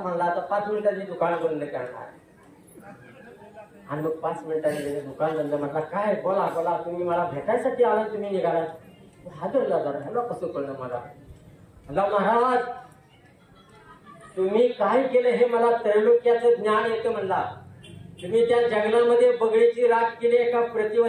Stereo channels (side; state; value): both; identical; correlation 1.00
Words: म्हणला. आता 5 मिनिटांनी दुकान बंद करणार. आणि मग 5 मिनिटांनी दुकान बंद म्हटला, काय बोला बोला, तुम्ही मला भेटायसाठी आला, तुम्ही निघाला. हादरला जरा, ह्याला कसं कळलं मला. म्हणला महाराज तुम्ही काय केलं हे मला त्रैलोक्याचं ज्ञान येतं म्हणला. तुम्ही त्या जंगलामध्ये बगळीची राख केली, एका